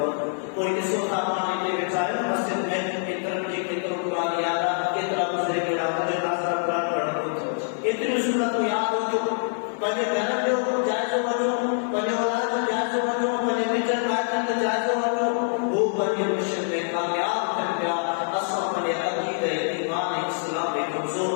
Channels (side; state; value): right; silent; digital silence